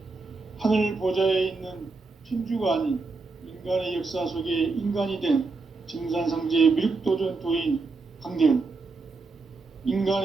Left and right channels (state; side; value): quieter; left; 3.9 dB